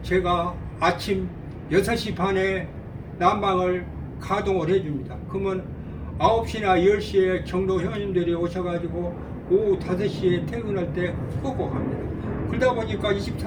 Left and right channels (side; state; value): both; identical; correlation 1.00